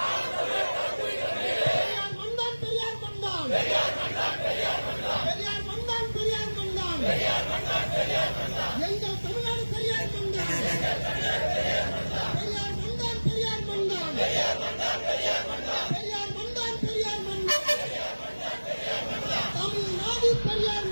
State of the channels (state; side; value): inverted; both; correlation -1.00